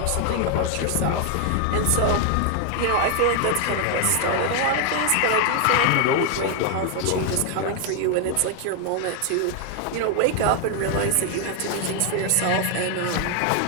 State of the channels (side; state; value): both; different; correlation 0.00